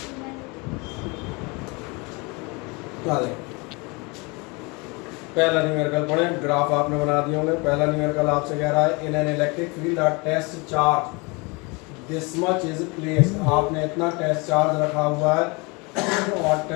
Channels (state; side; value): quieter; right; 28.1 dB